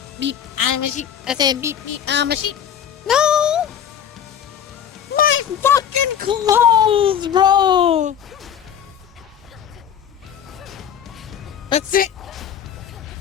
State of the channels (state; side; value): quieter; right; 9.0 dB